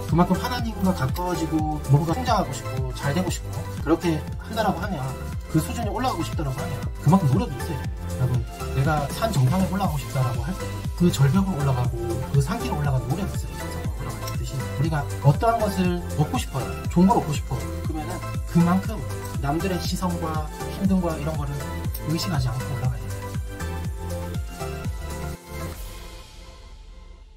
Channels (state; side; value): identical; both; correlation 1.00